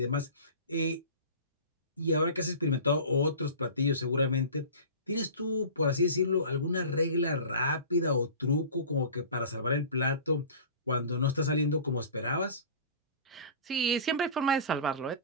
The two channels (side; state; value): both; inverted; correlation -0.37